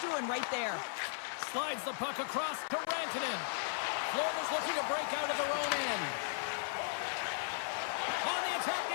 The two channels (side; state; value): right; silent; 53 dB below the other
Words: doing right there. Slides the puck across to Rantanen. Florida's looking to break out of their own end. On the attack